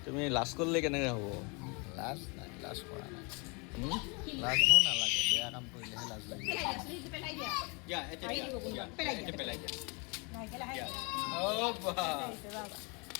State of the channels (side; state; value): right; quieter; 31.7 dB